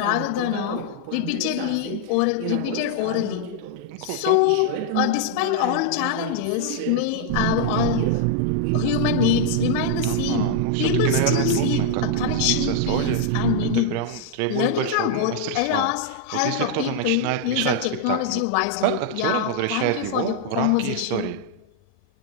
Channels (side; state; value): both; different; correlation -0.01